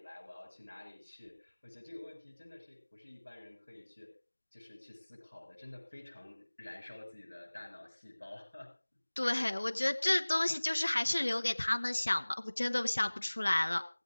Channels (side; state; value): both; inverted; correlation -1.00